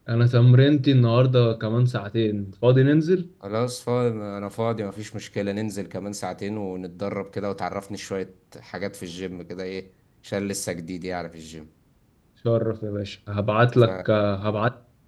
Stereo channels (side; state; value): both; identical; correlation 1.00